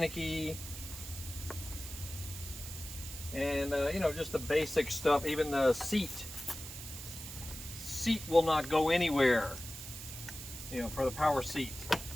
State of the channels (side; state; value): right; noise; hiss, 10 dB below the sound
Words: And you know, just the basic stuff. Even the seat will not go anywhere, you know, for the power seat.